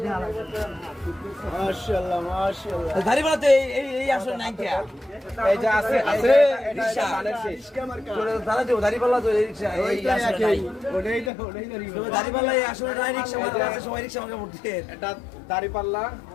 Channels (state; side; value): drops out; right; at 11.3 s